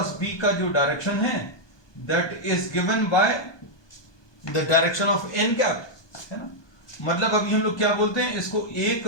बी का जो डायरेक्शन है that is given by the direction of N cap, है ना. मतलब अभी हम लोग क्या बोलते हैं इसको? A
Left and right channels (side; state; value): right; late; 1.2 ms